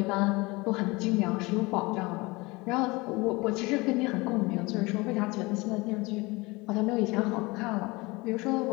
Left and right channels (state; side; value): quieter; right; 23.8 dB